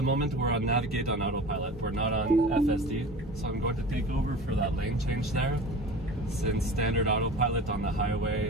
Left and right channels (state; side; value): normal; both; correlation 0.37